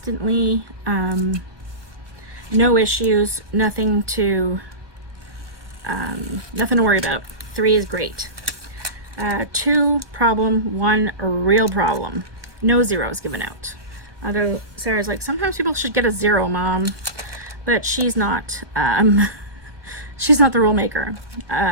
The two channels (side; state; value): left; late; 1.1 ms